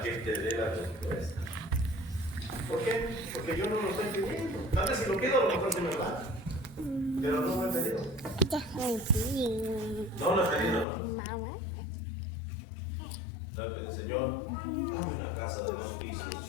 que te dé la respuesta. ¿Por qué? Porque yo no lo estoy pidiendo. Tal vez si lo pido, a lo mejor se me va. Pero no lo he pedido. No lo he pedido, hermano. No le pedí: Señor, dame una casa de 2 pisos,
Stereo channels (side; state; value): right; drops out; at 10.9 s